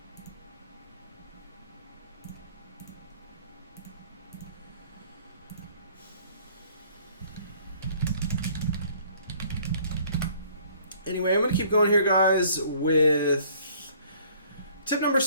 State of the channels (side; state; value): both; inverted; correlation -0.57